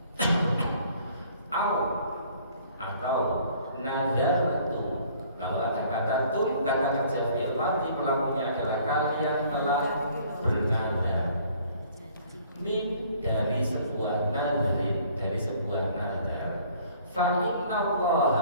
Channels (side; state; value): both; inverted; correlation -0.56